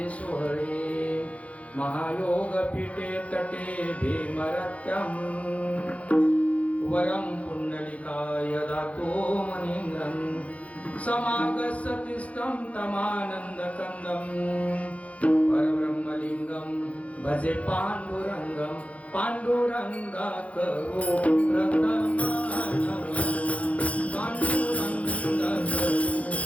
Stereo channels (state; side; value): late; right; 0.065 ms